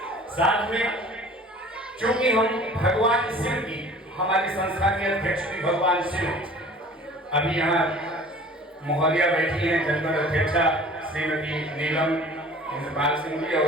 साथ में क्योंकि हम भगवान शिव की, हमारी संस्था के अध्यक्ष भी भगवान शिव, अभी यहाँ महोदया बैठी हैं, जनपद अध्यक्षा श्रीमती नीलम इंद्रपाल सिंह जी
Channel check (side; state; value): both; normal; correlation 0.46